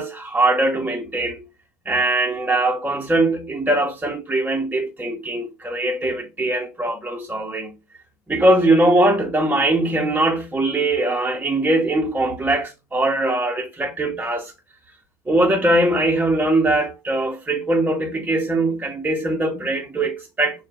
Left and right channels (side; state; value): both; normal; correlation 0.66